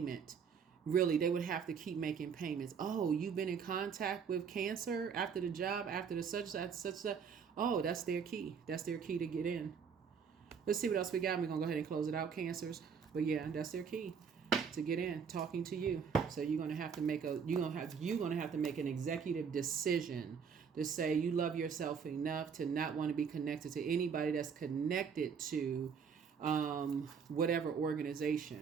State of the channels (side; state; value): left; quieter; 6.5 dB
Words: Really, they would have to keep making payments. Oh, you've been in contact with Cancer after the job, after the such. Oh, that's their key. That's their key to get in. Let's see what else we got. We're going to go ahead and close it out, Cancers. But yeah, that's their key to get in, talking to you. So you're going to have to make an executive decision to say you love yourself enough to not want to be connected to anybody that's connected to whatever